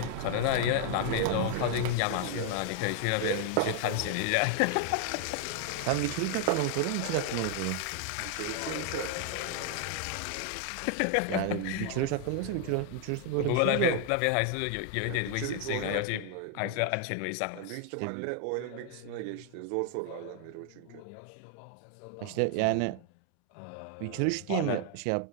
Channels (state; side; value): different; both; correlation 0.00